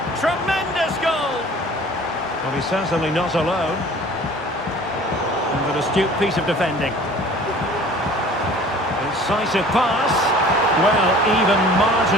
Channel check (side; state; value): both; normal; correlation 0.47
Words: Tremendous goal. Well, he's certainly not alone. And an astute piece of defending. Incisive pass. Well, even